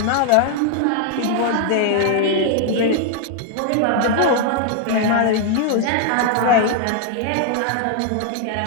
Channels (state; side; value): different; both; correlation 0.00